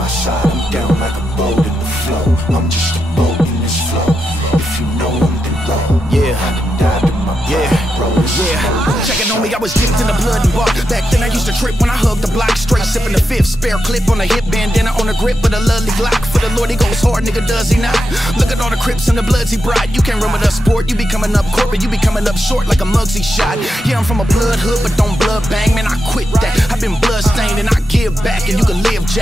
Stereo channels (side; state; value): both; normal; correlation 0.87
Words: side, I'm down like a boat in the flow. I'm just a boat in this flow. If you know I'm the road, Yeah. I done died in my pride, bro, this is more than a Checking show. on me, I was dipped in the blood and bark. Back then I used to trip when I hugged the block. Straight sipping the fifth, spare clip on the hip, bandana on the grip with a lovely Glock. For the Lord he goes hard, nigga, does he not? Look at all the Crips and the Bloods he brought. You can't run with us sport, you be coming up corporate, you be coming up short like a Muggsy shot. Yeah, I'm from a blood hood, but don't blood bang, man, I quit that. I've been blood stained and I give back, and you can live,